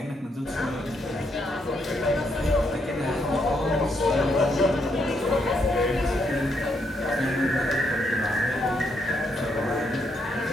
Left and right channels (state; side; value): normal; both; correlation 0.76